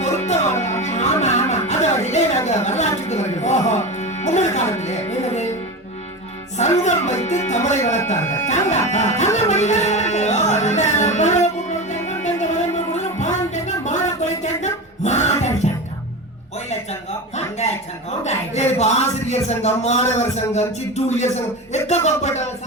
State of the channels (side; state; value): both; normal; correlation 0.24